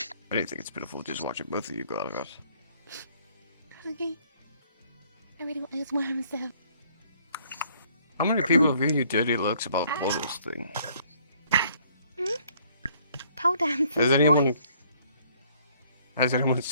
didn't think it's pitiful just watching both of you go out of us. Okay. I really want those worms though. How many people have given you dirty looks about the photos thing? Pole dancing. Has anyone Has anyone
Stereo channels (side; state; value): both; inverted; correlation -0.62